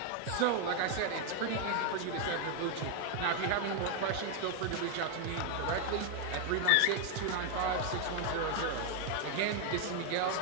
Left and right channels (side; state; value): both; different; correlation 0.01